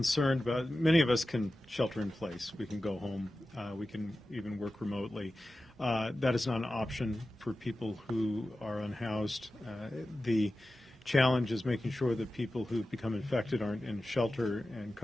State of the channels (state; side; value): normal; both; correlation 0.94